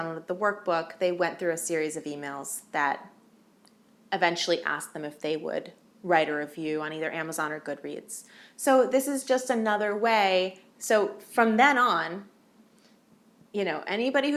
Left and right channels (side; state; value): both; identical; correlation 1.00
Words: the workbook, they went through a series of emails that eventually asked them if they would write a review on either Amazon or Goodreads. So this is just another way. So from then on, anybody